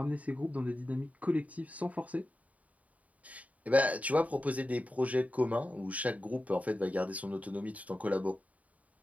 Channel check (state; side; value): late; left; 0.070 ms